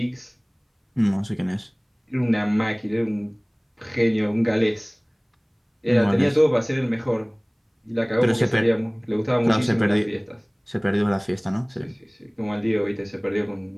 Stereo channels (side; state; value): both; identical; correlation 1.00